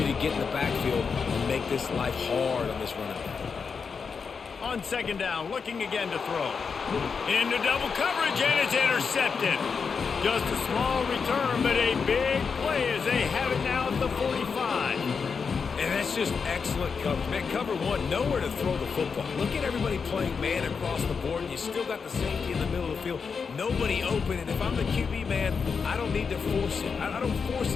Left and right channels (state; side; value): quieter; right; 5.6 dB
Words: to get in the backfield and make this life hard on this running back. On 2nd down, looking again to throw. Into double coverage, and it's intercepted. Just a small return, but a big play as they have it now at the 45. And that's just excellent coverage. Man, cover one, nowhere to throw the football. Look at everybody playing man across the board, and you still got the safety in the middle of the field. Nobody open, and if I'm the QB, man, I don't need to force it. I don't force